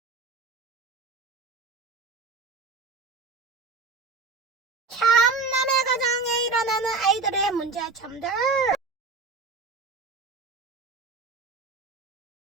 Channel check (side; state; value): left; quieter; 4.0 dB